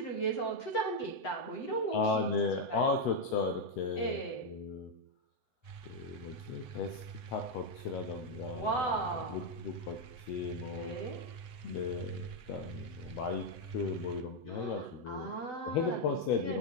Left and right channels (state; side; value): late; right; 7.9 ms